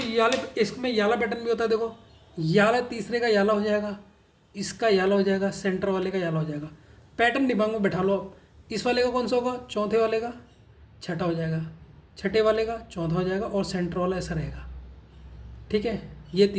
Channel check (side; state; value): both; identical; correlation 1.00